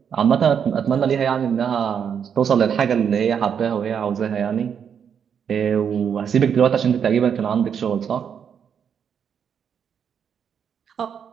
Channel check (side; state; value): left; quieter; 7.6 dB